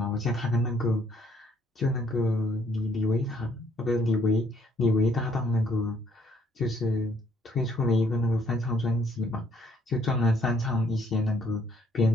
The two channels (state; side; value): normal; both; correlation 0.67